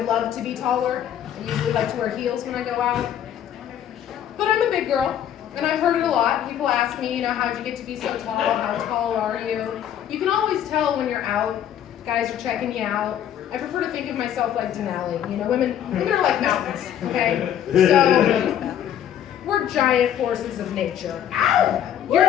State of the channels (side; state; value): right; quieter; 10.2 dB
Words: love to be taller. I usually like to wear heels when I go out. But I'm a big girl, and I've heard it a lot. People ask me, you know, how'd you get to be so tall? How tall are you? You can always tell when you're out. Guys are checking you out. I prefer to think of myself like Denali. You know, women are like mountains, okay? So, we're giant forces of nature. You're